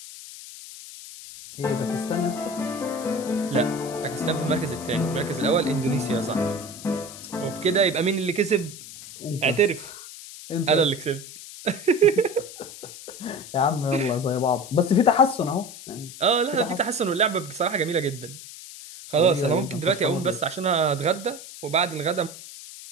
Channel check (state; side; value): noise; left; hiss, 14 dB below the sound